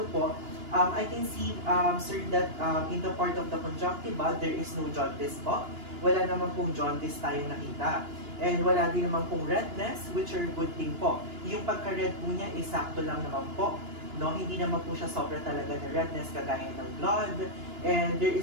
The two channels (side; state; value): left; late; 2.9 ms